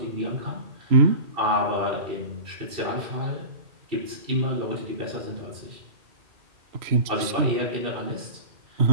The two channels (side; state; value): left; late; 3.0 ms